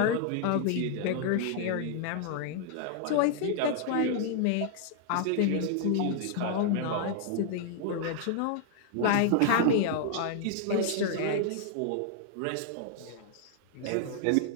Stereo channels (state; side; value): different; both; correlation 0.00